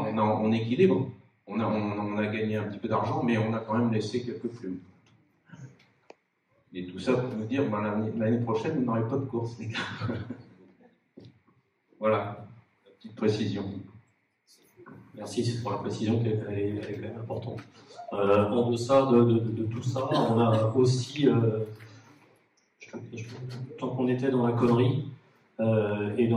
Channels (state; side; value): identical; both; correlation 1.00